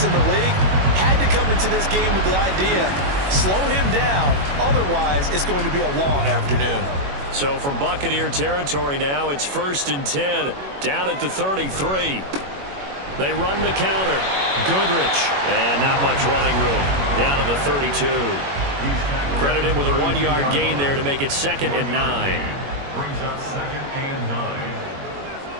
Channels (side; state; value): left; late; 21 ms